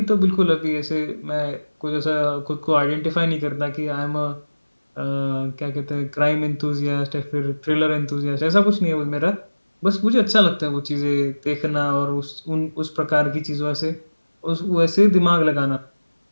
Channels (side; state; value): both; inverted; correlation -1.00